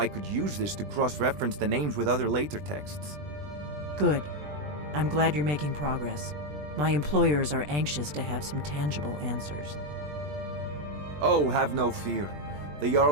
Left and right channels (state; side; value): late; left; 20 ms